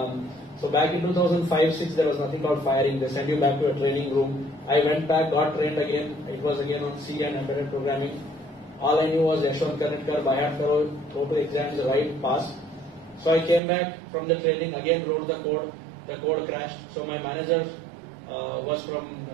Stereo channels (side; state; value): left; drops out; at 13.6 s